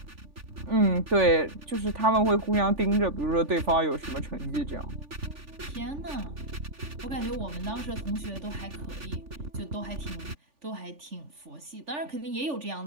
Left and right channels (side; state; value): left; late; 3.4 ms